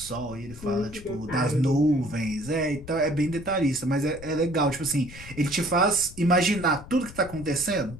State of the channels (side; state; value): left; noise; rumble, 15 dB below the sound